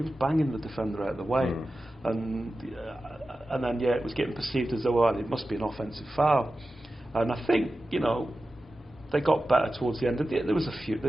was banging the defender out of the way, and then it was getting perceived as though it must be an offensive foul. And I think, you know, they got better towards the end. There was a few.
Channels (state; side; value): normal; both; correlation 0.93